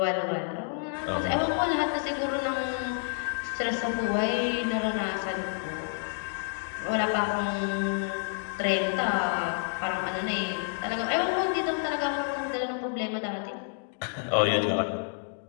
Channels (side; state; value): right; silent; digital silence